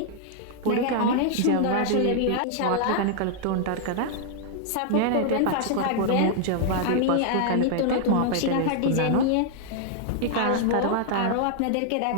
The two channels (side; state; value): both; different; correlation -0.01